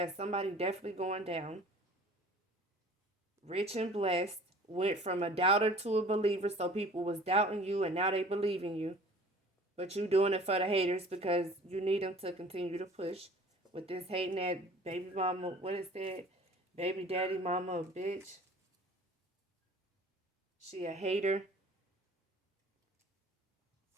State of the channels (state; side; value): normal; both; correlation 0.47